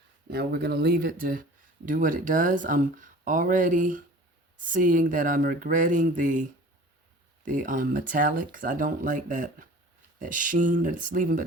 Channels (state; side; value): normal; both; correlation 0.43